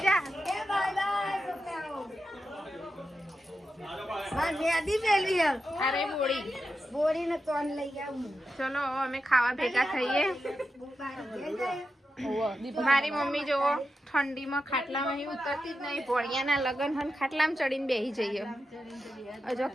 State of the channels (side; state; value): both; normal; correlation 0.89